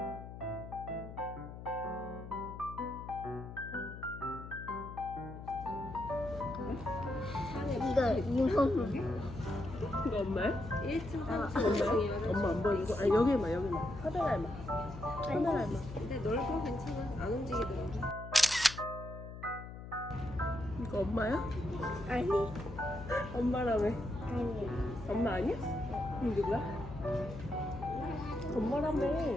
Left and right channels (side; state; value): left; noise; hum, 12 dB below the sound